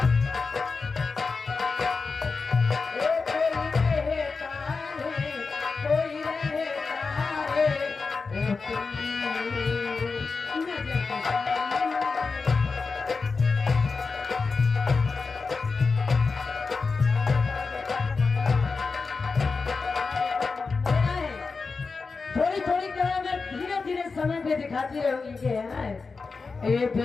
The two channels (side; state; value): right; quieter; 4.5 dB